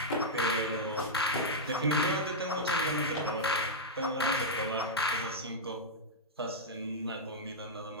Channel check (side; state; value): both; normal; correlation -0.06